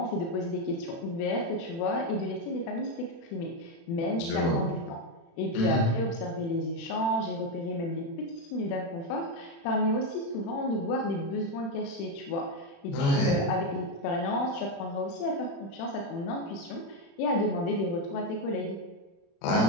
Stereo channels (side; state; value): right; late; 36 ms